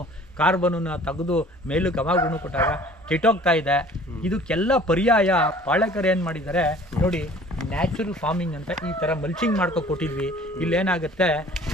ಕಾರ್ಬನನ್ನು ತೆಗೆದು ಮೇಲಕ್ಕೆ ಹವಾಗುಣ ಕೊಟ್ಟಾಗ ಕೆಟ್ಟೋಗ್ತಾ ಇದೆ. ಇದಕ್ಕೆಲ್ಲ ಪರ್ಯಾಯ ಪಾಳಕರ್ ಏನು ಮಾಡಿದ್ದಾರೆ ನೋಡಿ, ನ್ಯಾಚುರಲ್ ಫಾರ್ಮಿಂಗ್ ಅಂತ ಈ ಥರ ಮಲ್ಚಿಂಗ್ ಮಾಡ್ಕೊ ಕೊಟ್ಟಿದ್ವಿ. ಇಲ್ಲೇನಾಗುತ್ತೆ,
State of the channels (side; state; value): both; normal; correlation 0.50